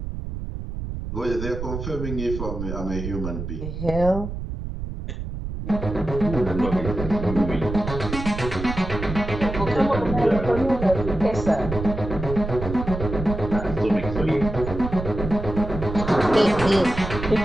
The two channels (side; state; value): right; noise; rumble, 6 dB below the sound